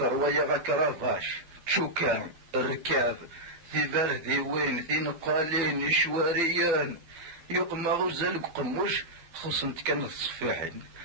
ويا كرافاش تشوكان الركاب ثيبار ذي وين ذي نقالين شواريان يقمى غزال قموش خصنت كانت صفيحين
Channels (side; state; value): left; late; 12 ms